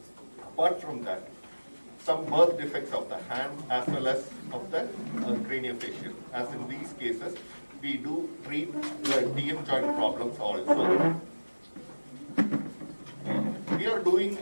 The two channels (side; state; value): both; inverted; correlation -1.00